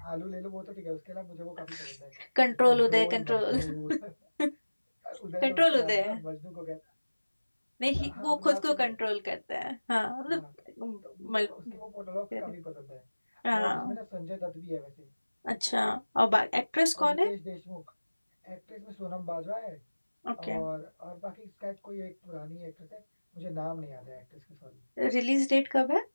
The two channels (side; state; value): both; inverted; correlation -1.00